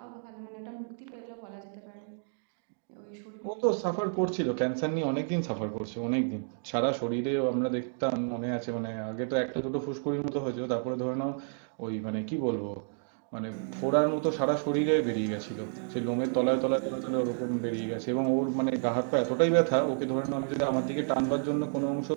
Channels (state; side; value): silent; left; digital silence